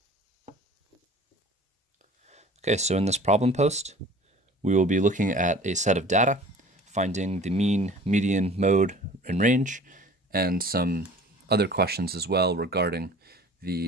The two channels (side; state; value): both; normal; correlation 0.45